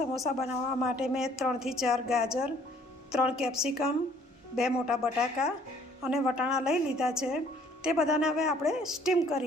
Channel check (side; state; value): both; normal; correlation 0.59